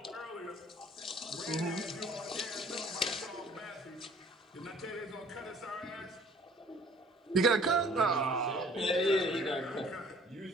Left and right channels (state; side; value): normal; both; correlation 0.54